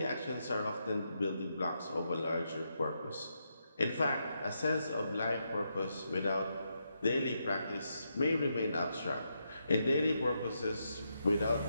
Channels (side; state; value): both; inverted; correlation -0.82